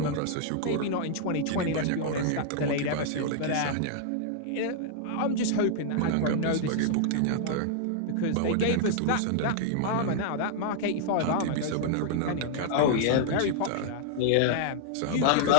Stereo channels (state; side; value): different; both; correlation -0.01